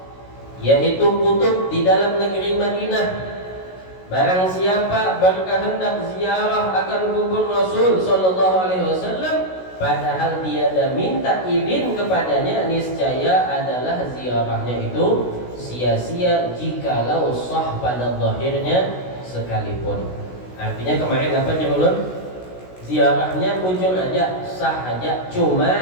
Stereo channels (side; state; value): right; late; 16 ms